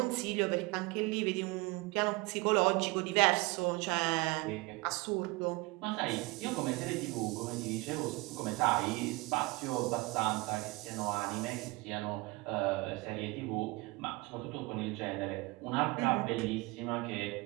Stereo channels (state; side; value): quieter; left; 23.9 dB